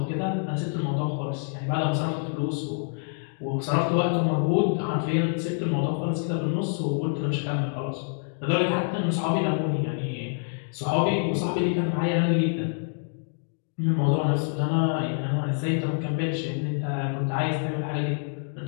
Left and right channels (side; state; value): right; silent; 60 dB below the other